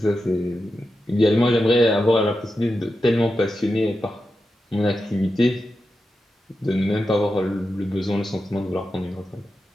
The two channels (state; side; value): normal; both; correlation 0.90